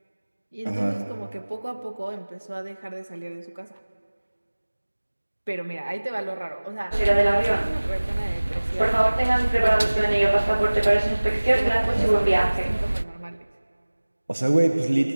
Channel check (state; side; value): inverted; both; correlation -1.00